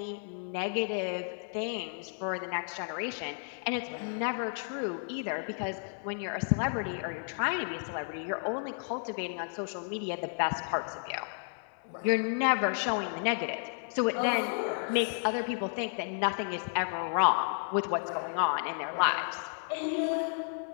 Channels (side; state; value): right; silent; 56 dB below the other